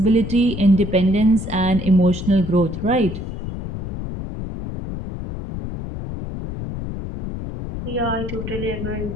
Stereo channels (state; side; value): noise; left; rumble, 7 dB below the sound